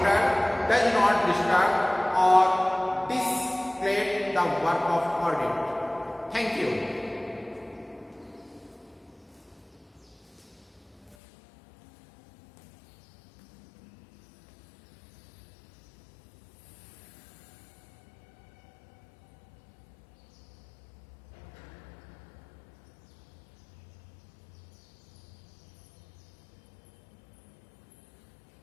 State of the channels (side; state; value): right; drops out; at 11.2 s